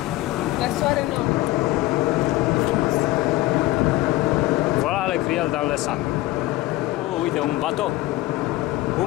La soare nou. Voilà le criel dans le sang. Oh, uite, un bateau.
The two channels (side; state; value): right; quieter; 17.5 dB